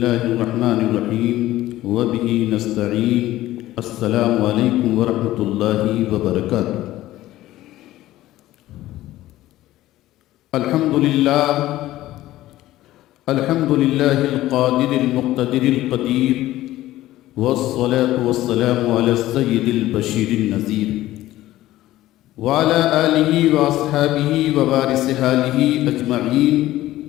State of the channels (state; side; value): quieter; right; 15.4 dB